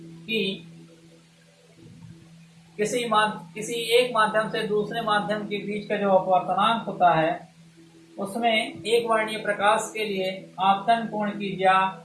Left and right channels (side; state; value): both; identical; correlation 1.00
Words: कि किसी एक माध्यम से दूसरे माध्यम के बीच का जो अपवर्तनांक होता है उसमें एक वर्णीय प्रकाश के लिए आपतन कोण की ज्या